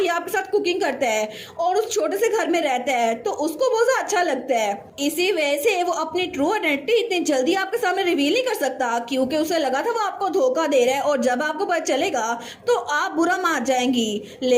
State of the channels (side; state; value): both; identical; correlation 1.00